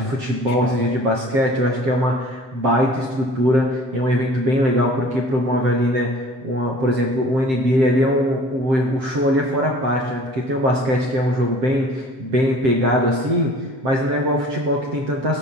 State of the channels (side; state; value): left; late; 7.6 ms